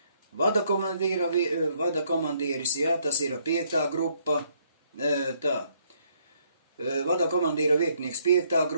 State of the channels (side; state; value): both; inverted; correlation -0.69